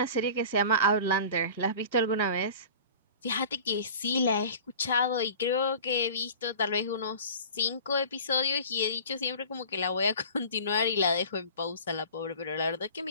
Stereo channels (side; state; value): both; inverted; correlation -0.40